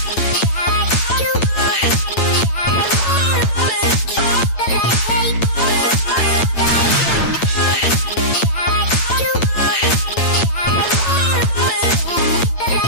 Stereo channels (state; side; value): late; right; 8.9 ms